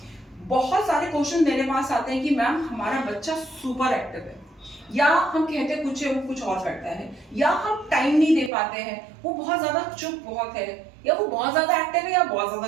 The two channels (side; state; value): left; drops out; at 8.5 s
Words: बहुत सारे क्वेश्चन मेरे पास आते हैं कि मैम हमारा बच्चा सुपर एक्टिव है, या हम कहते हैं कुछ है वो कुछ और करता है, या हम टाइम नहीं दे पाते हैं, वो बहुत ज्यादा चुप बहुत है, या वो बहुत ज्यादा एक्टिव है या बहुत